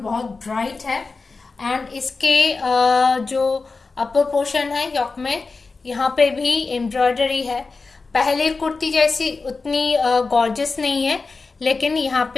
ब्राइट है। एंड इसके जो अपर पोर्शन है योक में, यहाँ पे भी एम्ब्रॉयडरी है। पहले कुर्ती जैसी उतनी गॉर्जियस नहीं है, लेकिन यहाँ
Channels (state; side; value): quieter; right; 4.1 dB